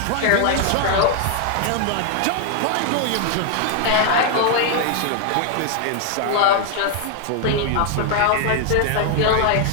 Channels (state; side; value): different; both; correlation 0.00